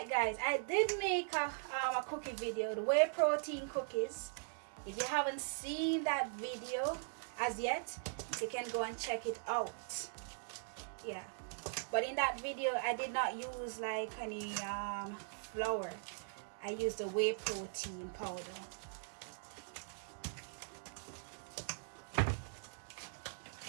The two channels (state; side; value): silent; left; digital silence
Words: guys. I did make a cookie video, the whey protein cookies. If you haven't seen that video as yet, you can go and check it out. Yeah. But in that video, I did not use like any flour. I used the whey protein powder.